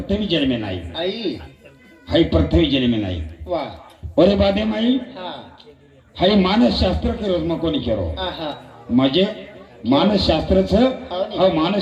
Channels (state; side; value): identical; both; correlation 1.00